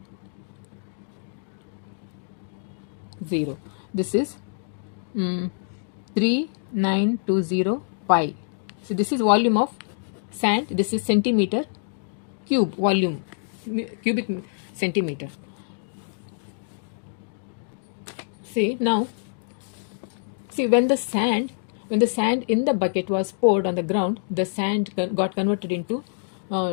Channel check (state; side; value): silent; right; digital silence